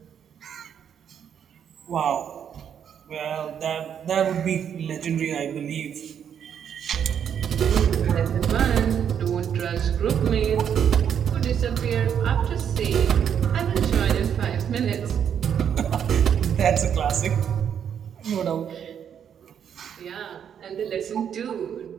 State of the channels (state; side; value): quieter; left; 8.4 dB